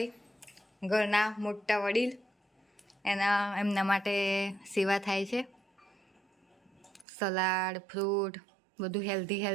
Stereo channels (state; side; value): drops out; left; at 7.1 s